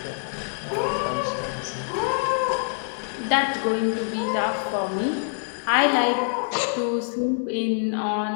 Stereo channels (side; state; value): right; silent; digital silence